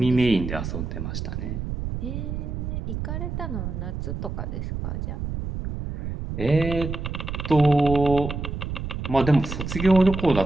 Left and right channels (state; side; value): noise; right; rumble, 5 dB below the sound